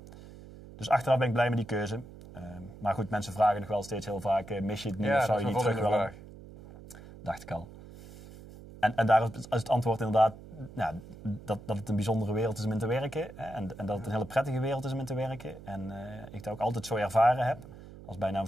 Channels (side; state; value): right; noise; hum, 17 dB below the sound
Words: dus achteraf ben ik blij met die keuze. Maar goed, mensen vragen nog wel steeds heel vaak, mis je het niet of zou je niet terug willen? Dacht ik al. En daar is het antwoord inderdaad dat het een bijzondere wereld is om in te werken. Hè, en dat het een hele prettige wereld is om in te werken. En ik dat ook altijd zo ervaren heb. Als bijna een